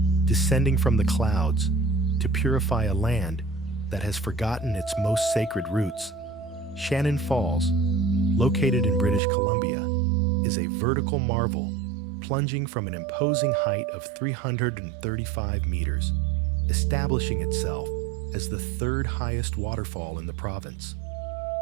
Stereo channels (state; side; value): drops out; left; at 9.2 s